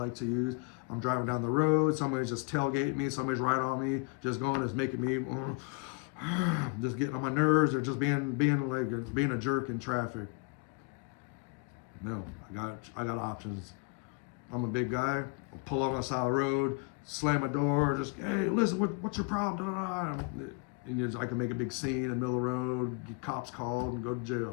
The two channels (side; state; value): right; quieter; 32.2 dB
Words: to use. I'm driving down the road. Somebody's just tailgating me. Somebody's right on me. Just making me, just getting on my nerves, or just being a jerk in traffic. No, I got options. I'm a big guy. I'll pull out on the side of the road, slam my door, just, hey, listen, what's your problem? And I can make a big scene in the middle of the road, get cops called, and go to